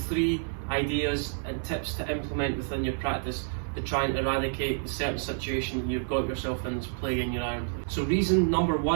ideas and tips to implement within your practice to try and eradicate the certain situation that you've got yourself in that's plaguing your iron play. So reason number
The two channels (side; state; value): left; silent; 59 dB below the other